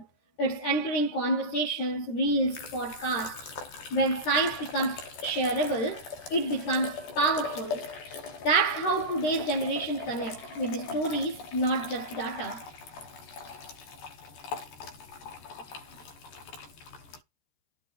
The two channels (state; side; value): late; right; 14 ms